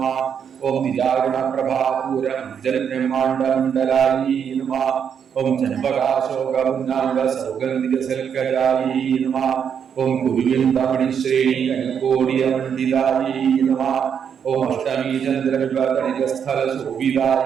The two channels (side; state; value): left; quieter; 7.7 dB